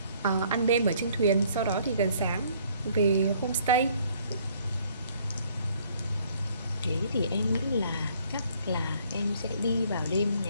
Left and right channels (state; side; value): inverted; both; correlation -0.61